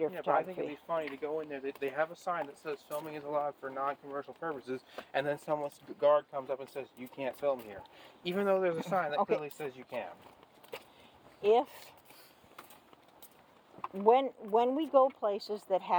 Yeah, but I think photography. it'd be funny to go in there. They have a sign that says filming is allowed for non-commercial purposes, and then someone's guard comes up and says you can't film here, even though there's a sign that Okay. clearly says you can. When we go places that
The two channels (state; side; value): identical; both; correlation 1.00